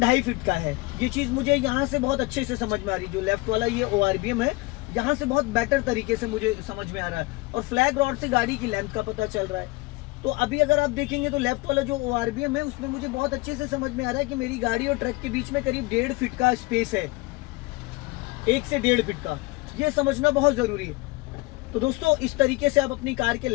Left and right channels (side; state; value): right; quieter; 23.7 dB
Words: फीट का है। ये चीज मुझे यहाँ से बहुत अच्छे से समझ में आ रही है। जो लेफ्ट वाला ये ओआरबीएम है, यहाँ से बहुत बेटर तरीके से मुझे समझ में आ रहा है, और फ्लैग रॉड से गाड़ी की लेंथ का पता चल रहा है। तो अभी अगर आप देखेंगे तो लेफ्ट वाला जो ओआरबीएम है उसमें मुझे बहुत अच्छे से समझ में आ रहा है कि मेरी गाड़ी और ट्रक के बीच में करीब 1.5 फीट का स्पेस है, 1 से 1.5 फीट का। ये समझना बहुत जरूरी है। तो दोस्तों इस तरीके से आप अपनी कार के